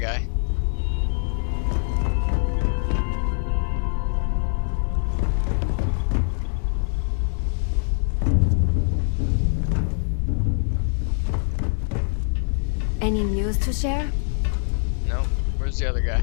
Any news to share? No, where's the other guy?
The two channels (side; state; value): right; silent; 63 dB below the other